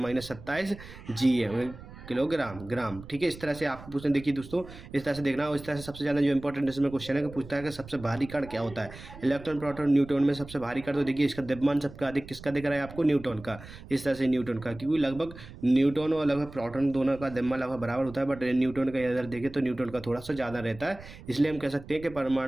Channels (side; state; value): right; noise; rumble, 16 dB below the sound